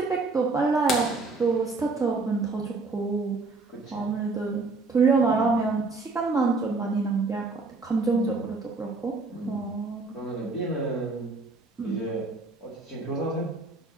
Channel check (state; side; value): quieter; left; 3.7 dB